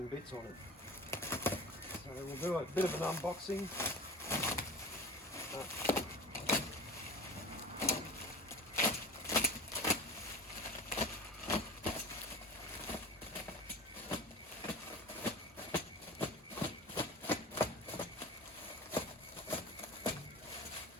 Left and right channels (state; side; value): normal; both; correlation 0.33